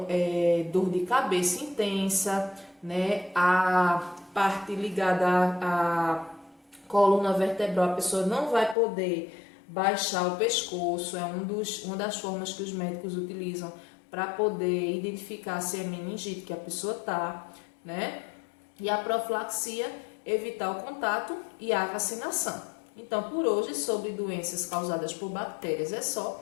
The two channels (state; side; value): drops out; right; at 8.8 s